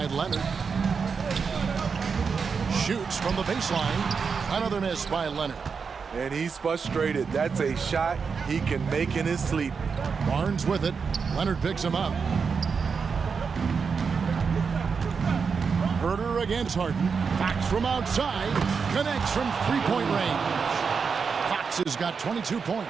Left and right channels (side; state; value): left; quieter; 5.6 dB